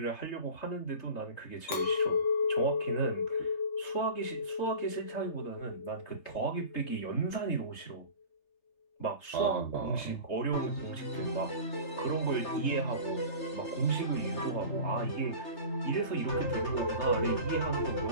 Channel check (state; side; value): late; right; 3.2 ms